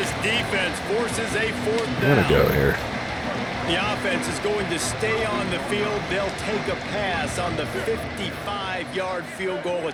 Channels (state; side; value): identical; both; correlation 1.00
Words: defense forces a 4th I'm down. going to go here. The offense is going to stay on the field. They'll take a pass on the 55-yard field goal